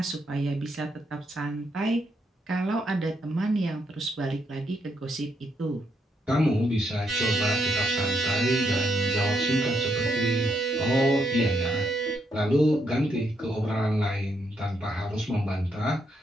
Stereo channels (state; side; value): normal; both; correlation 0.78